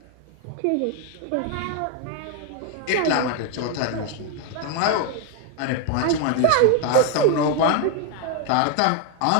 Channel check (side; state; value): both; different; correlation 0.01